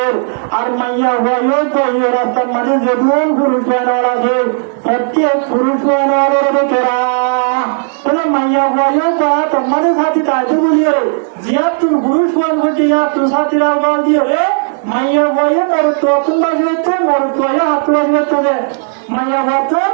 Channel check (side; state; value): left; silent; digital silence